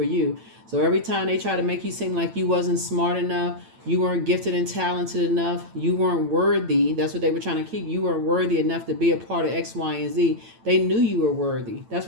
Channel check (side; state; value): left; late; 8.9 ms